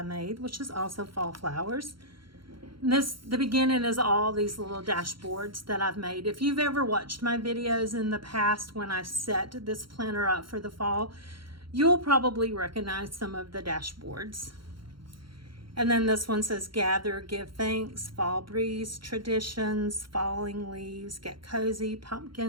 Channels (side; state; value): left; late; 0.73 ms